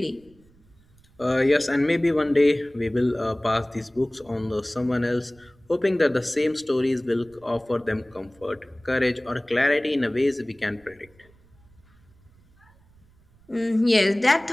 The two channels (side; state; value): right; noise; rumble, 30 dB below the sound